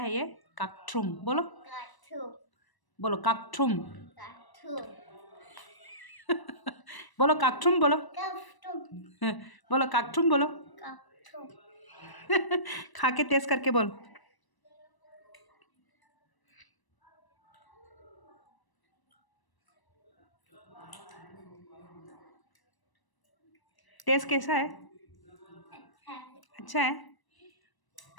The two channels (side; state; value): right; late; 1.0 ms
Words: है ये kakthrum बोलो बोलो kakthrum बोलो kakthrum बोलो बोलो kakthrum बोलो खा के टेस्ट करके बोल टेस्ट कैसा है अच्छा है